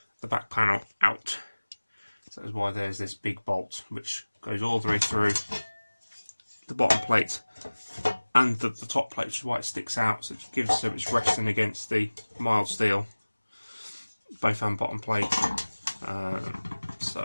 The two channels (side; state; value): both; inverted; correlation -1.00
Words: the back panel out. So that's why there's this big bolt which goes all the way through the bottom plate and the top plate, which is why it sticks out, so it gives so it's resting against the mild steel, both and bottom plate. So